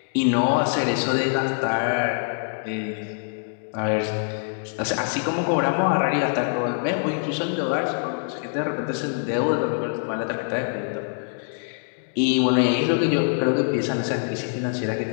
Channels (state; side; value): silent; right; digital silence